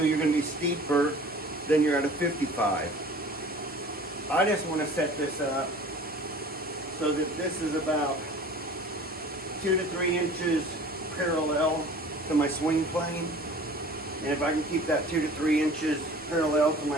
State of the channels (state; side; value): normal; both; correlation 0.44